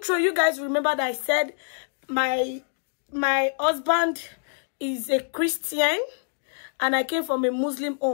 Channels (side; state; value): right; silent; digital silence